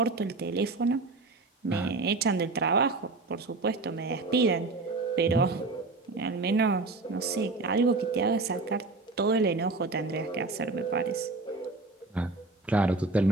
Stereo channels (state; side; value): quieter; left; 3.5 dB